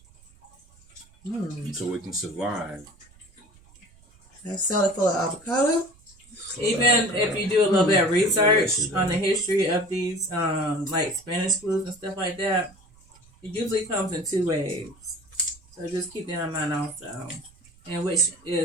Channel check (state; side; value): noise; right; rumble, 28 dB below the sound